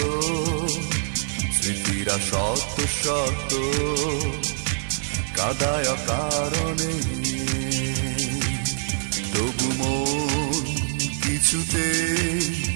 স্মৃতিরা শত শত কাদায় কারণে। তবু মন কিছুতে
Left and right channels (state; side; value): silent; left; digital silence